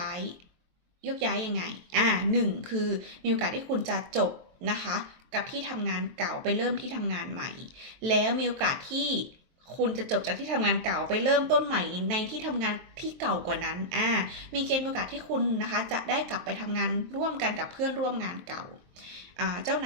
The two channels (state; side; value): late; left; 23 ms